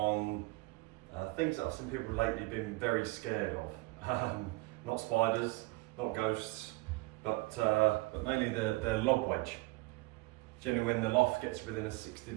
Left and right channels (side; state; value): left; quieter; 23.1 dB